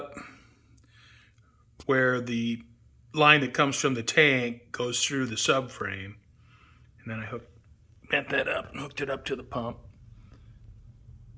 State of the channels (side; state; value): both; identical; correlation 1.00